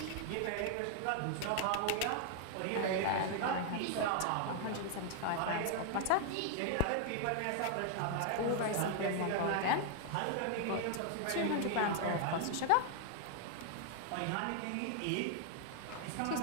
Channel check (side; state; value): both; different; correlation 0.00